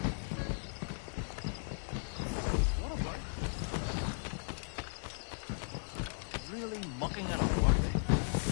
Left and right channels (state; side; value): silent; right; digital silence